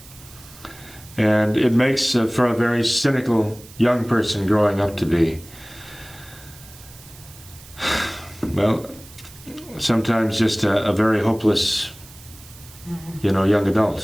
And it makes for a very cynical young person growing up to be, well, sometimes just a very hopeless, young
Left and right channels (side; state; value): right; noise; hiss, 21 dB below the sound